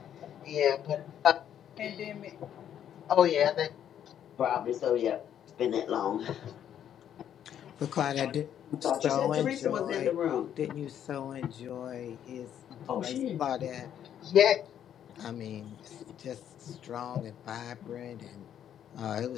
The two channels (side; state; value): right; quieter; 9.9 dB